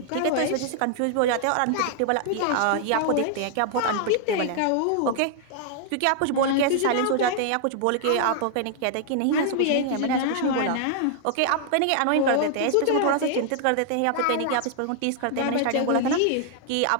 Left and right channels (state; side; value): different; both; correlation -0.01